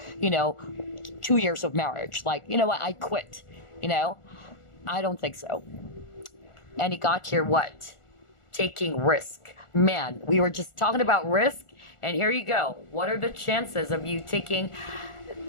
2 years of marriage. Like, what, I quit. I don't think so. And he got here what? Taking risk. Man, we were just talking about risk, and here you go. What are the chances of you taking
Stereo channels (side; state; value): right; late; 1.4 ms